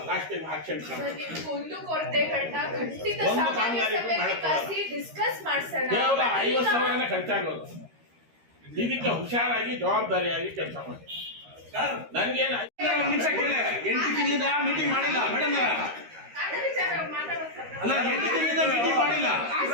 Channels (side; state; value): left; late; 13 ms